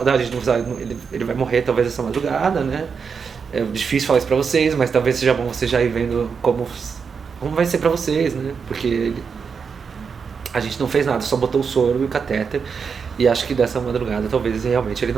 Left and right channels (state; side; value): quieter; left; 5.9 dB